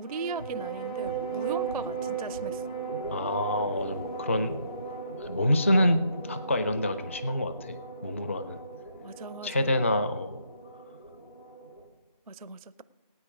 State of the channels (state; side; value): inverted; both; correlation -0.67